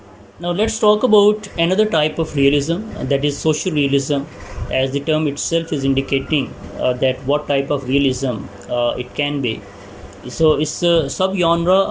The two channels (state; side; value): identical; both; correlation 1.00